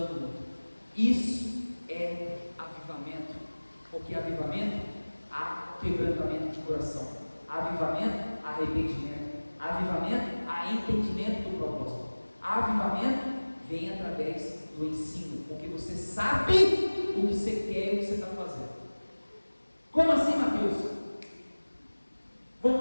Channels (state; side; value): inverted; both; correlation -1.00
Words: o outro. Isso é avivamento. Porque avivamento há quebrantamento de coração. Avivamento, arrependimento. Avivamento, há entendimento do propósito. Avivamento vem através do ensino, porque você sabe o que você quer e o que você está fazendo. Como assim, Mateus?